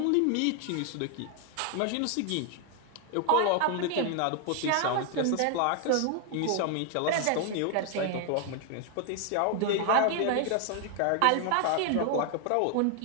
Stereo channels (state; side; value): different; both; correlation 0.00